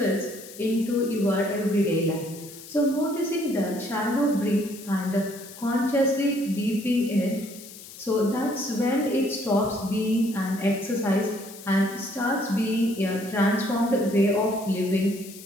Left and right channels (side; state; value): left; noise; hiss, 16 dB below the sound